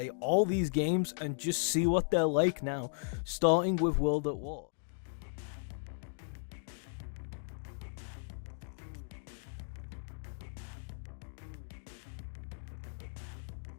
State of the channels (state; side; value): silent; right; digital silence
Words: all these games and just see what they're like now, starting with World at War.